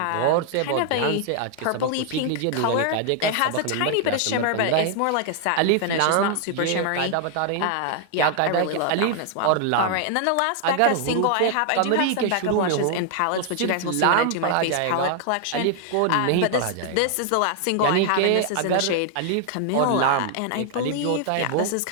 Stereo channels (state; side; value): different; both; correlation 0.00